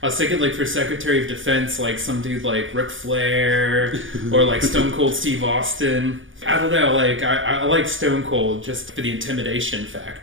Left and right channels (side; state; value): left; late; 0.57 ms